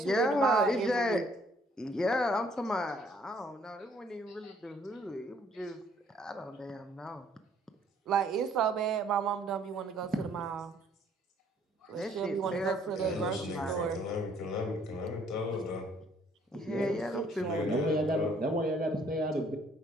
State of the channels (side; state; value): both; normal; correlation 0.62